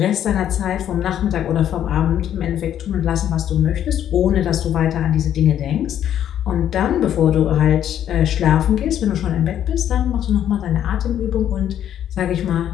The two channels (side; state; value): right; quieter; 10.4 dB